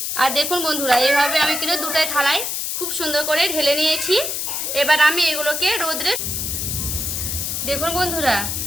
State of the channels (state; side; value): noise; left; hiss, 2 dB below the sound